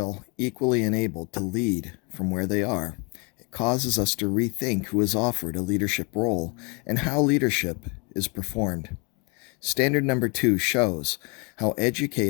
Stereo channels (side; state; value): right; quieter; 32.1 dB